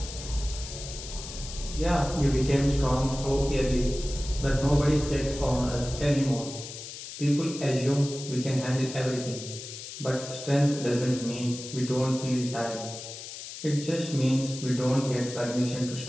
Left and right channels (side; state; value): left; noise; hiss, 11 dB below the sound